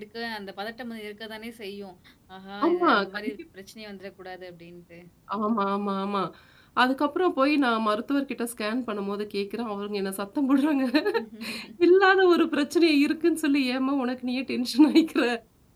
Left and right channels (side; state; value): both; identical; correlation 1.00